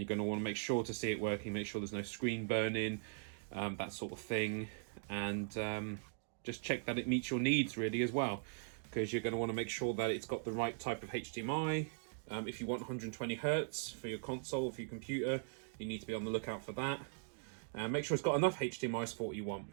you're going to want to make sure to see it working, make sure there's no screen burning, that sort of thing. And just check that it meets your needs really as well, because you're going to want to make sure that it's got the right type of HDMI. If you want 120 Hertz for your console, for your computer, you need to be on the lookout for that. Make sure it's got enough HDMI support you want.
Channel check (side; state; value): left; silent; digital silence